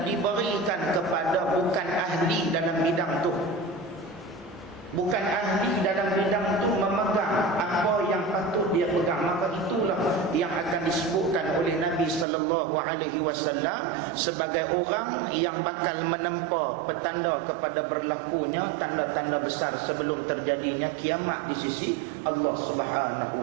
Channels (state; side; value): drops out; left; at 12.2 s